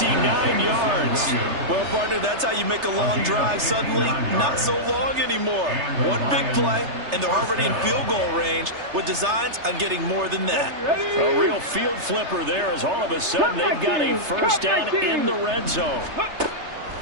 yards. Well, partner, that's how you make a long drive suddenly not so long anymore. One big play, and they're already in field goal range with designs on getting more than that. A real field flipper there as all of a sudden they've got a first down in the red zone.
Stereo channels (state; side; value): late; left; 3.3 ms